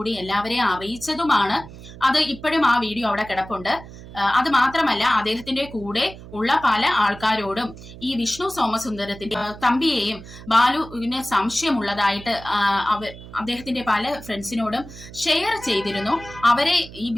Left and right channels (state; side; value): noise; right; hum, 16 dB below the sound